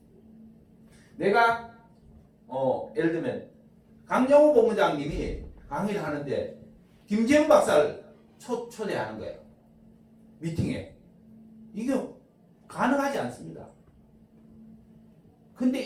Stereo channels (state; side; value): identical; both; correlation 1.00